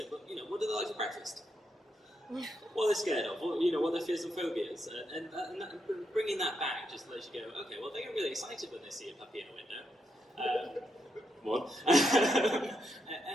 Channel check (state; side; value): normal; both; correlation 0.82